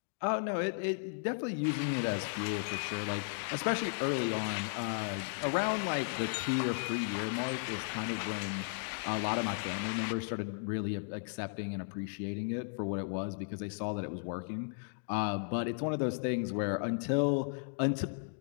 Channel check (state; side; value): silent; right; digital silence